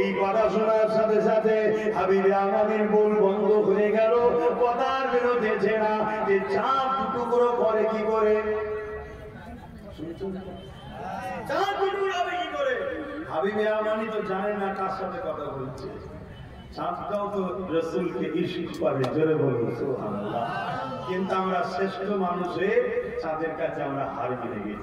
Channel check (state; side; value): identical; both; correlation 1.00